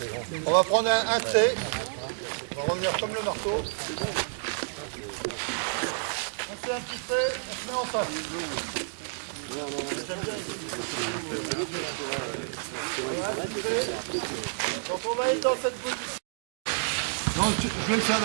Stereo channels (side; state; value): left; silent; digital silence